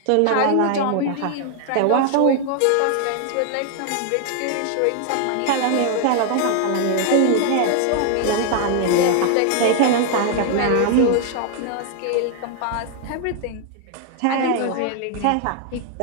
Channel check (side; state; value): both; different; correlation 0.00